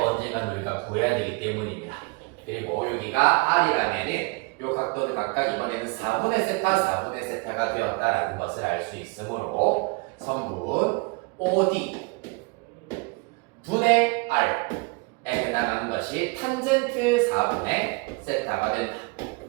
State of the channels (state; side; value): quieter; left; 29.2 dB